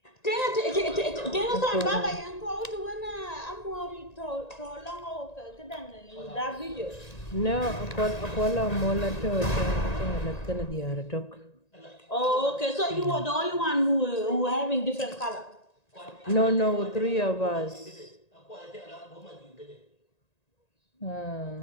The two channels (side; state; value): right; late; 1.9 ms